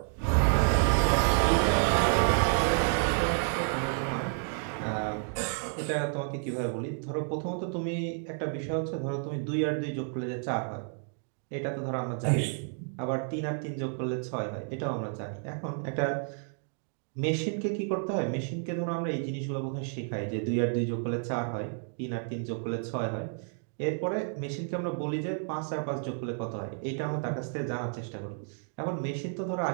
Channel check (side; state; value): left; silent; 57 dB below the other